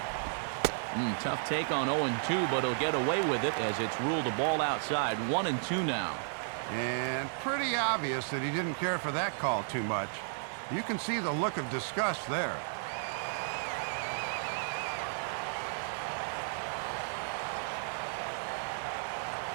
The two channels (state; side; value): silent; left; digital silence